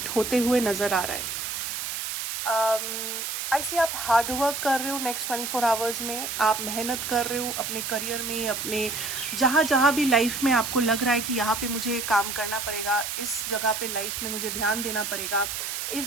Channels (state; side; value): noise; right; hiss, 4 dB below the sound